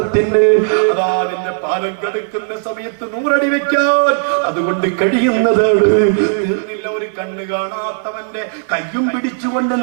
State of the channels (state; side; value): silent; left; 64 dB below the other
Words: അതാ അതിന്റെ പാലം കടക്കുന്ന സമയത്ത് 100 അടി വെക്കാൻ അതുകൊണ്ട് കഴിയുന്നത് തീർന്നില്ല. ഒരു കണ്ണ് കാണാത്തവന്റെ കയ്യും പിടിച്ചുകൊണ്ട്